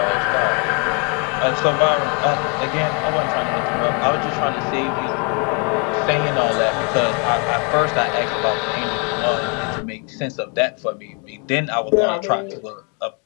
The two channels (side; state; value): right; quieter; 34.2 dB